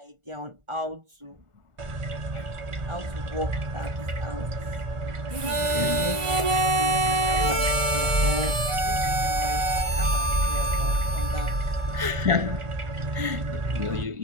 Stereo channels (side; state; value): left; late; 1.4 ms